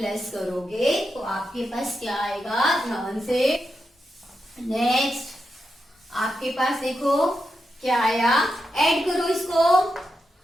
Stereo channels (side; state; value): both; normal; correlation 0.87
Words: करोगे तो आपके पास क्या आएगा ध्यान से, नेक्स्ट आपके पास देखो क्या आया, ऐड करो इसको